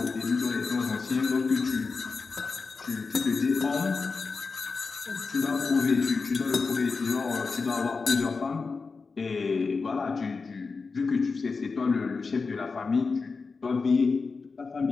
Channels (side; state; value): right; quieter; 4.5 dB